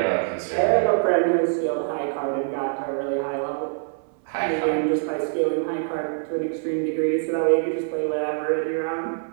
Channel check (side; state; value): left; silent; 62 dB below the other